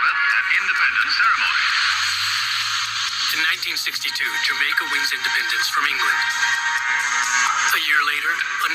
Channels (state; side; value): identical; both; correlation 1.00